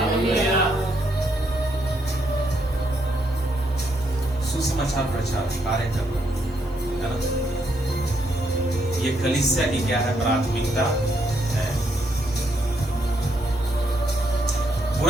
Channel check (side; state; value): both; normal; correlation 0.75